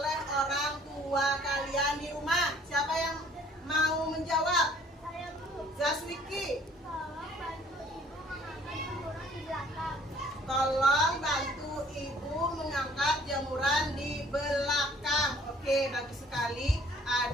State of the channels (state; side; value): normal; both; correlation 0.57